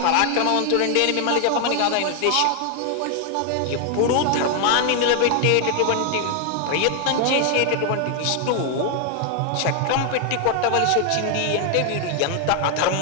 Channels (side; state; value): both; different; correlation 0.00